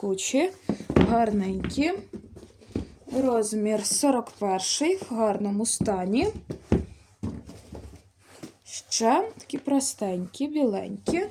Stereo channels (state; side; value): identical; both; correlation 1.00